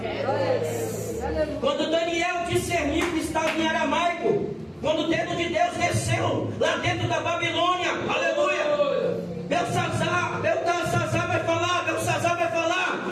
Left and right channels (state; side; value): identical; both; correlation 1.00